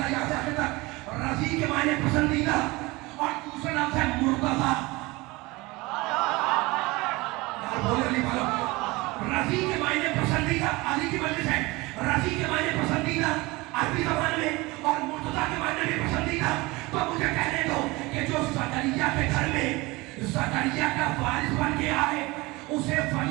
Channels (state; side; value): quieter; left; 22.6 dB